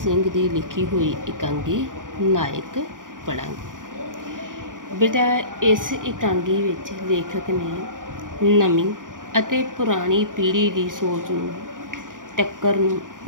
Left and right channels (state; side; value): late; left; 0.89 ms